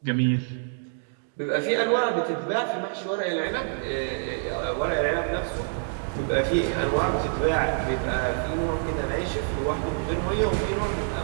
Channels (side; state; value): left; silent; digital silence